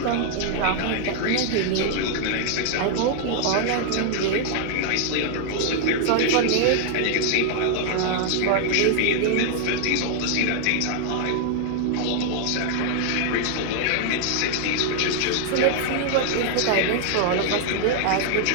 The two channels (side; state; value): both; different; correlation 0.00